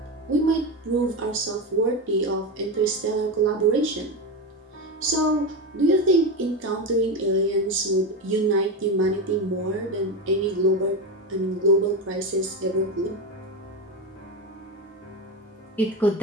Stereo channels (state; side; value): normal; both; correlation 0.16